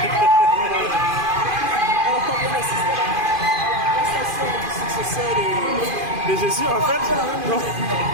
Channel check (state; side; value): late; left; 2.5 ms